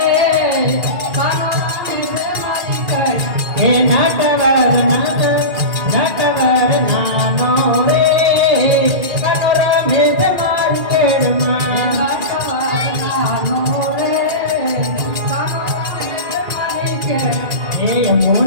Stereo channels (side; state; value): left; late; 2.3 ms